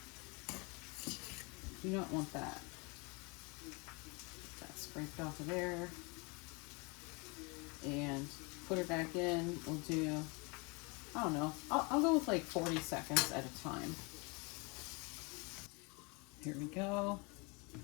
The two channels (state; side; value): quieter; right; 29.7 dB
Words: You don't want that. Get that scraped off of there. And put it back in. We'll do, I don't know, I'll go with like 40 seconds at a time. Here we go.